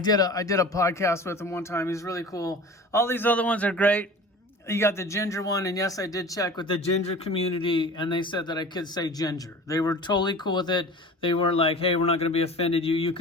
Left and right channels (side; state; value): both; normal; correlation 0.39